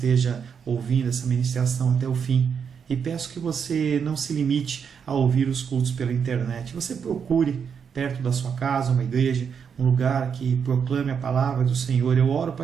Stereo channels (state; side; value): quieter; left; 6.9 dB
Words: ouvindo essa ministração até o fim. E peço que você não se limite a ouvir os cultos pela internet. Você procure perto da sua casa uma igreja, um lugar que proclame a palavra do Senhor. Eu oro para